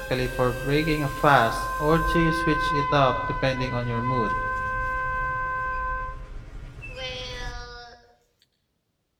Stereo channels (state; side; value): identical; both; correlation 1.00